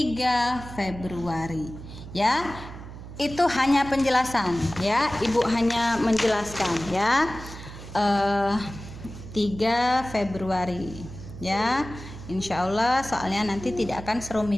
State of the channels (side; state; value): right; noise; hum, 13 dB below the sound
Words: Februari ya. Itu hanya penjelasan ya, Ibu hanya menjelaskan ya. 3 Februari ya. Insya Allah soalnya nanti tidak akan